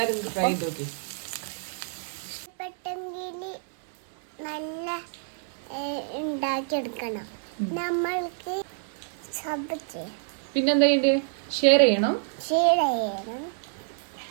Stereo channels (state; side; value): silent; left; digital silence